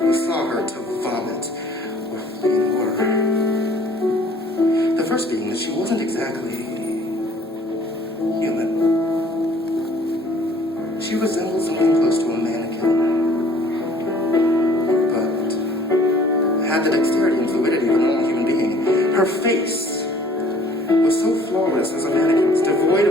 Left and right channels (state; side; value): normal; both; correlation 0.54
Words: saw her to vomit or flee in horror. The first being that she wasn't exactly human. She resembled something close to a mannequin, but had the dexterity and fluidity of a normal human being. Her face was so flawless as a mannequin's, devoid